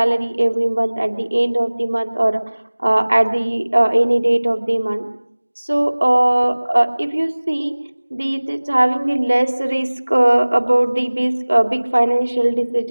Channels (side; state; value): both; inverted; correlation -1.00